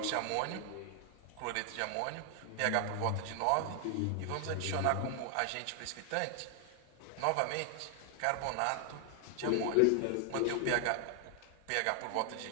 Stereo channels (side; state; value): both; different; correlation 0.00